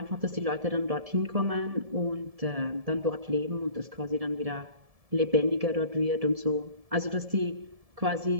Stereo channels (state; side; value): late; left; 1.7 ms